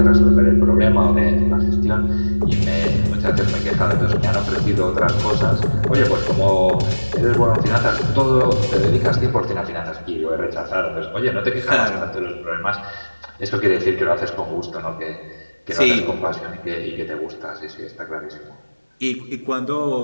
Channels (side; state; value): both; inverted; correlation -1.00